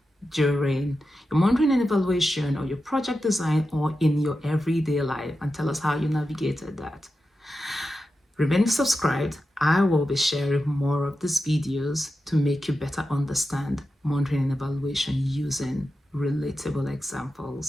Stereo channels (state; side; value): normal; both; correlation 0.91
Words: during your monitoring and evaluation, or your project design, or in your everyday life, and tell us how you navigated that. Remain subscribed. I will be sharing more of these videos to make you better understand monitoring and evaluation using relatable